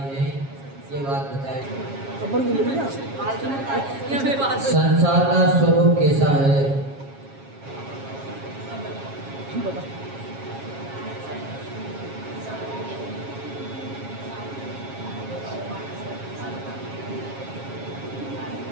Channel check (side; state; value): left; late; 7.4 ms